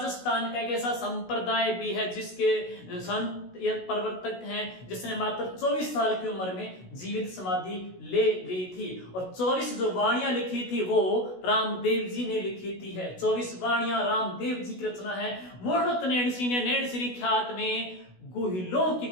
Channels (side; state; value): right; late; 16 ms